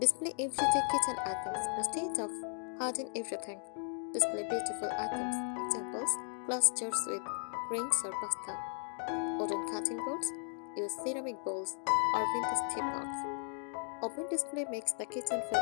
everyday kitchen items. Instead of Hiding everything. Display beautiful items. Examples: glass jars with grains or pasta. Wooden cutting boards. Use ceramic bowls or vintage teapots. Open display makes the kitchen feel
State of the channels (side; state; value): right; silent; 54 dB below the other